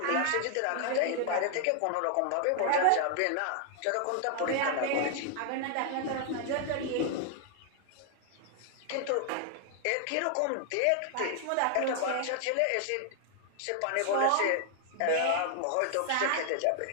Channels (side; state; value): both; different; correlation 0.00